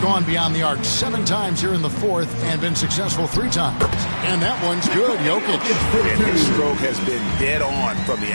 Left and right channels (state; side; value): inverted; both; correlation -1.00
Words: beyond the arc 7 times here in the 4th and been successful 3 times. And that one's good, Jokic. And his stroke has been dead on from the